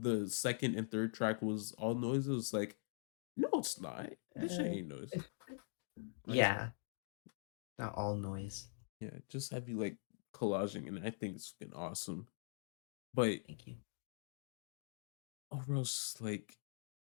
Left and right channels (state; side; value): silent; right; digital silence